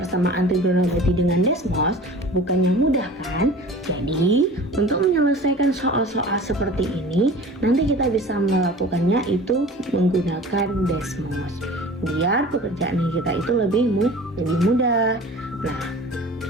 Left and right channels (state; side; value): normal; both; correlation 0.41